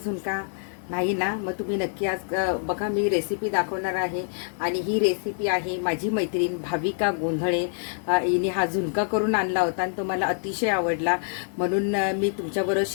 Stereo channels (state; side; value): silent; right; digital silence